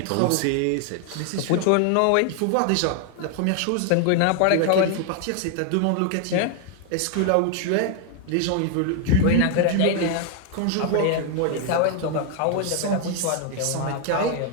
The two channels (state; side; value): different; both; correlation 0.00